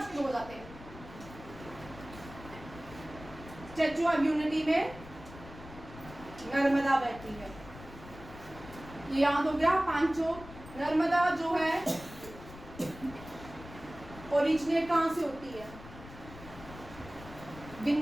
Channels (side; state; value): left; noise; rumble, 16 dB below the sound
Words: शुरू हो जाते हैं। स्टैचू ऑफ यूनिटी में नर्मदा बहती है, ये याद हो गया पांचों। नर्मदा जो है ओरिजिनेट कहाँ से होती है?